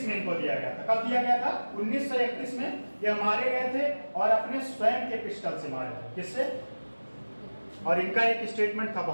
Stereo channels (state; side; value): inverted; both; correlation -1.00